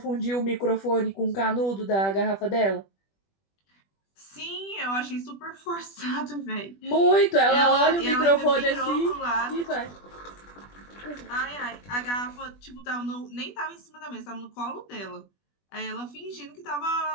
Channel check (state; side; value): late; right; 20 ms